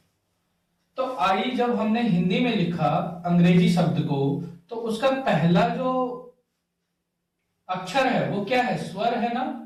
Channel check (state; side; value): identical; both; correlation 1.00